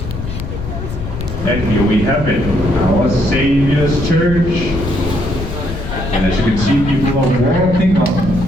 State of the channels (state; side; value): noise; left; rumble, 8 dB below the sound